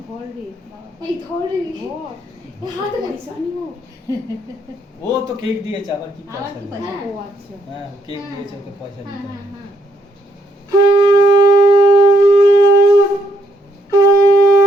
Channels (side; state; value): both; normal; correlation 0.73